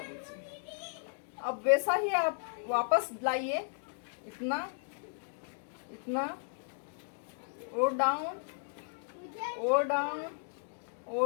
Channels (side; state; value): right; silent; digital silence